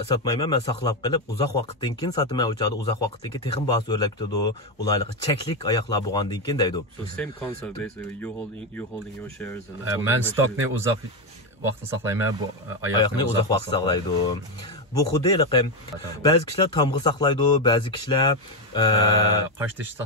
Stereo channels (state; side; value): normal; both; correlation 0.08